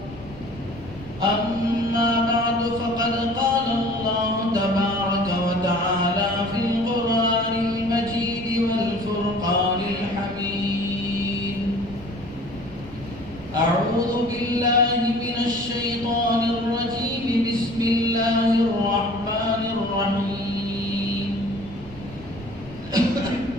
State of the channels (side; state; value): left; noise; rumble, 19 dB below the sound